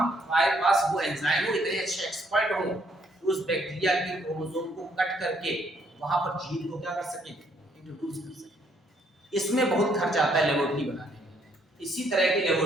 पास वो एंजाइम हो, इतने अच्छे एक्सपर्ट हो उस बैक्टीरिया के क्रोमोसोम को कट करके वहां पर जीन को क्या कर सके, इंट्रोड्यूस कर सके। इसमें बहुत खर्च आता है लेबोरेटरी बनाने में। इसी तरह की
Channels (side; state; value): both; normal; correlation 0.68